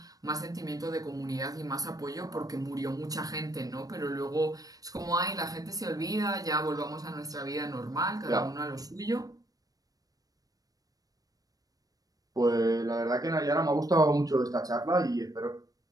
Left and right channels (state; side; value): late; left; 0.18 ms